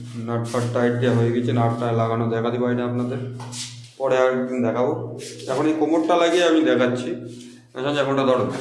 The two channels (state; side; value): identical; both; correlation 1.00